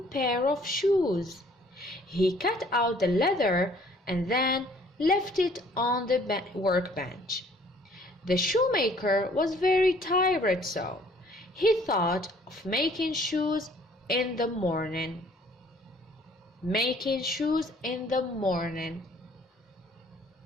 pair of shoes. He cut out the leather and then left it on the workbench. The shoemaker was very tired, so he thought of making shoes in the morning. Making shoes in the morning.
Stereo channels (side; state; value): both; normal; correlation 0.58